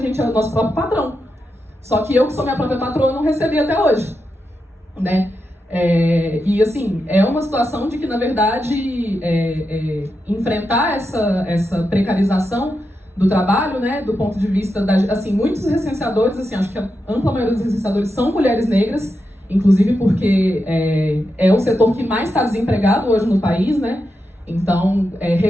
é o nosso próprio patrão. Só que eu, que sou minha própria patroa, não recebi até hoje, né? E, assim, é uma situação de que, na verdade, enfrentar essa precarização do trabalho, né, do ponto de vista assim, muitos recenseadores, assim, acho que a ampla maioria dos recenseadores são mulheres negras, inclusive porque é o setor que mais está desempregado hoje no país, né? Então,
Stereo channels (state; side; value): normal; both; correlation 0.87